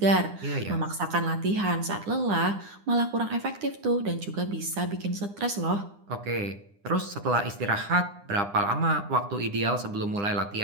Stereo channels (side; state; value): left; late; 9.9 ms